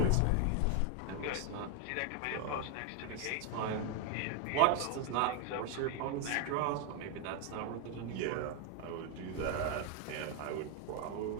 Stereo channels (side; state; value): both; different; correlation 0.00